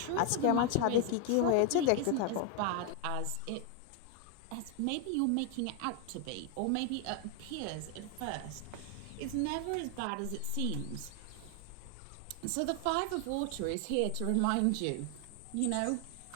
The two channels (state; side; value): different; both; correlation 0.00